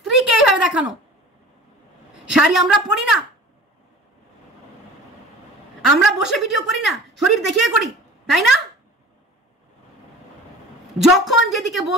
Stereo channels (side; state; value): both; normal; correlation 0.41